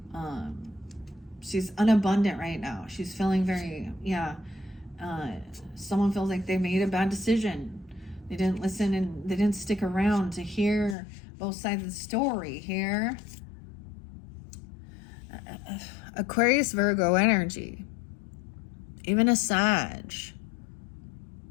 She's unabundant right now. She's feeling very, someone feels like they made a bad decision. They didn't listen and they didn't stick around to hear both sides of the story here. Aquarius, Virgo energy. Even a Sag.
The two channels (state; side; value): drops out; right; at 11.0 s